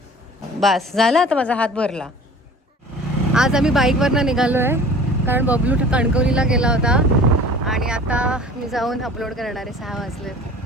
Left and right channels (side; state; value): both; normal; correlation 0.44